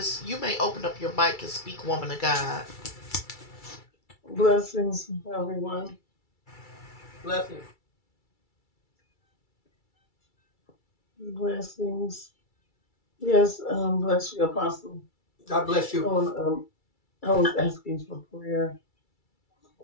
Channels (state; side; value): late; right; 2.3 ms